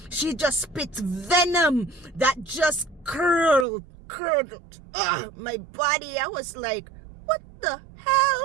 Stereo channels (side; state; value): left; drops out; at 3.7 s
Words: She just spits venom that just curled my body. I was like, what the